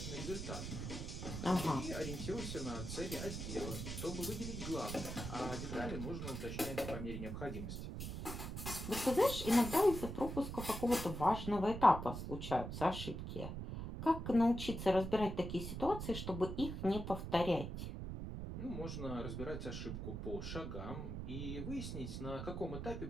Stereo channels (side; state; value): right; noise; rumble, 6 dB below the sound